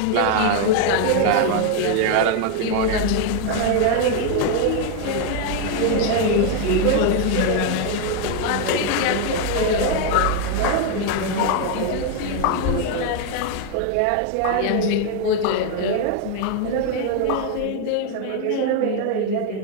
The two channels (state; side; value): different; both; correlation 0.01